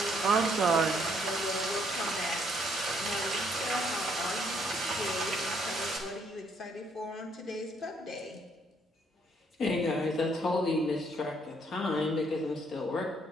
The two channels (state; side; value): normal; both; correlation 0.69